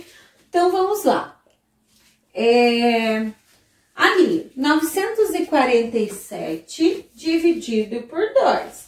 Então, vamos lá. Ali, 947 dividido por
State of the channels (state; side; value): identical; both; correlation 1.00